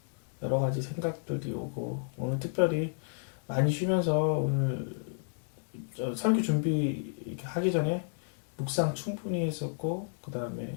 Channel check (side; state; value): right; silent; digital silence